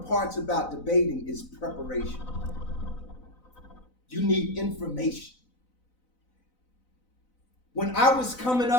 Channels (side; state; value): right; late; 4.0 ms